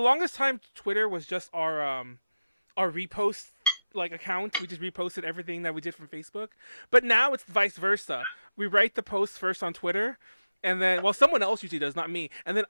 time, Twitter was just our repost account. We just reposted everything that we did from Facebook. But now it's vice versa. We write the posts first on Twitter, and then someone else usually does, not me. And then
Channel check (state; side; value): inverted; both; correlation -0.97